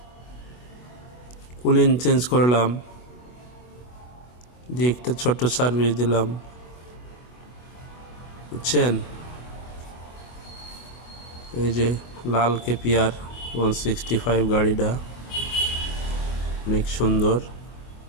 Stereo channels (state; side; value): late; right; 24 ms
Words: কুলিং চেঞ্জ করলাম, দিয়ে একটা ছোট্ট সার্ভিস দিলাম, বুঝছেন? এই যে লাল কেপিআর 165 গাড়িটা অনেক সুন্দর।